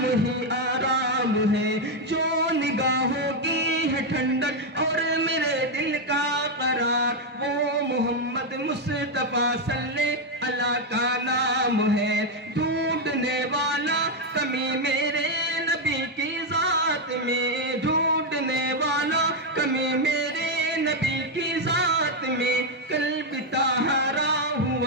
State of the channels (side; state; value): both; normal; correlation 0.03